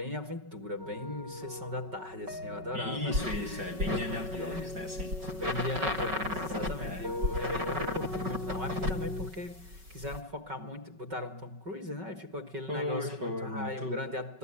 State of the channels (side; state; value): left; late; 5.3 ms